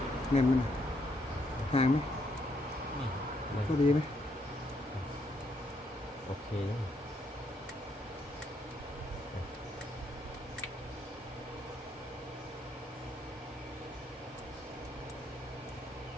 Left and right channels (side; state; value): both; normal; correlation 0.74